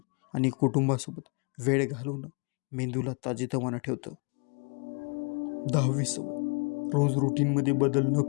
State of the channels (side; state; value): right; quieter; 35.2 dB